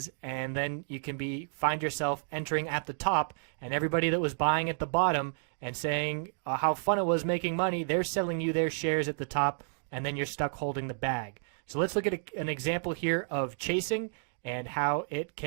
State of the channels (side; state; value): left; silent; digital silence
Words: And then you can find yourself entering at the top, and everybody that was buying at the bottom and saying how fun it was making money, they're selling you their shares at the top, and then you're stuck holding the bag. So let's look at an example here of chasing and how it